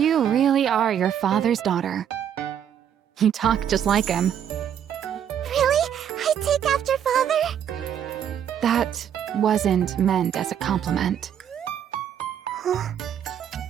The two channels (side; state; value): left; quieter; 9.2 dB